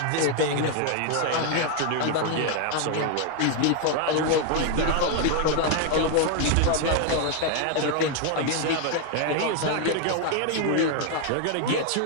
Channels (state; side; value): different; both; correlation 0.01